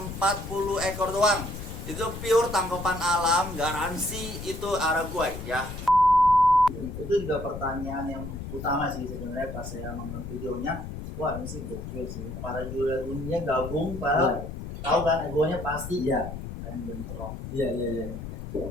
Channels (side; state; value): left; noise; rumble, 9 dB below the sound